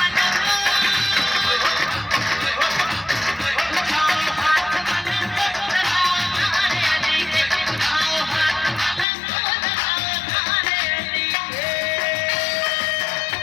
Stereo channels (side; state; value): right; drops out; at 9.1 s